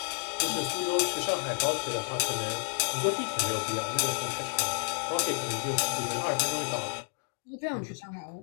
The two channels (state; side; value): silent; right; digital silence